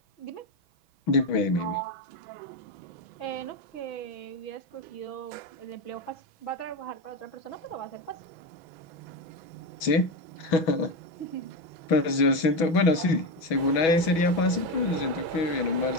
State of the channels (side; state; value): right; late; 6.1 ms